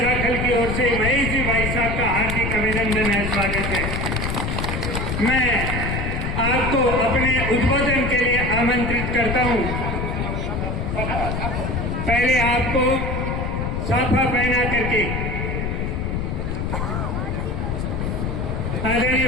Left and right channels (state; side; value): noise; left; rumble, 1 dB below the sound